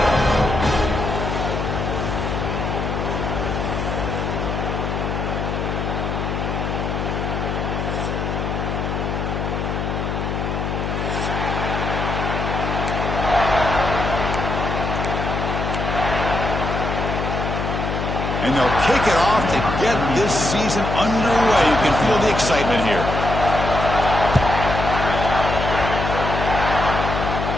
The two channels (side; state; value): left; noise; hum, 2 dB below the sound